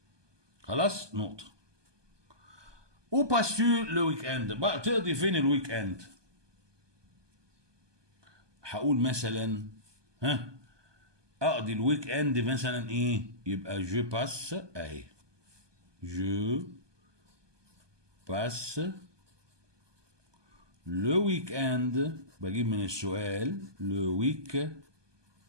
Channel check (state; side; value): late; left; 1.2 ms